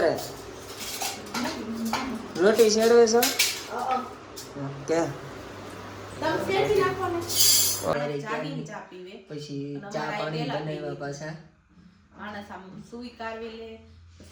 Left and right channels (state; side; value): identical; both; correlation 1.00